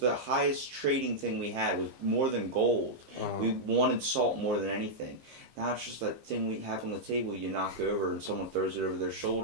highest trading thing we had, was more than gold. We wanted salt more than anything. Now it's just that thing we have on the table you knock over and someone throws it over their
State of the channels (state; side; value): late; left; 15 ms